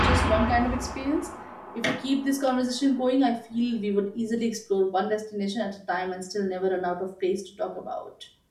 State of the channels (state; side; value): identical; both; correlation 1.00